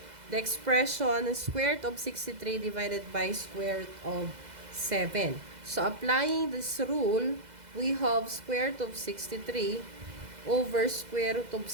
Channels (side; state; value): left; late; 2.0 ms